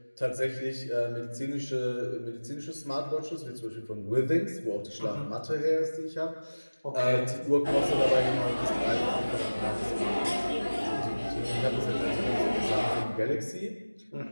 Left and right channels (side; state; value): both; inverted; correlation -1.00